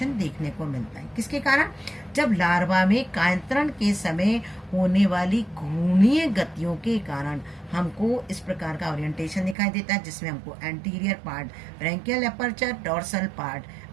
देखने को मिलता है। किसके कारण, जब लार्वा में कायांतरण के समय होने वाली घूर्णीय गतियों के कारण हमको इस प्रकार का ओरिएंटेशन दिखाई देता है, जिसमें हमको anterior part branchial aperture, dorsal part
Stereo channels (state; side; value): drops out; left; at 9.6 s